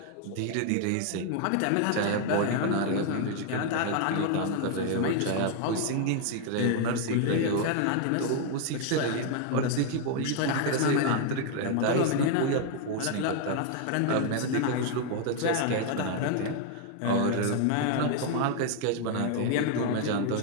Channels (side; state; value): both; different; correlation 0.00